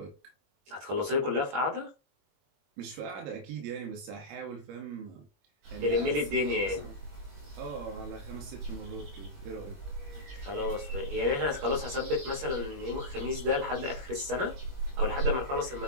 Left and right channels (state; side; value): late; left; 21 ms